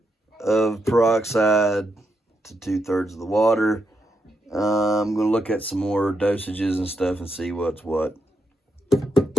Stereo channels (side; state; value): both; normal; correlation 0.82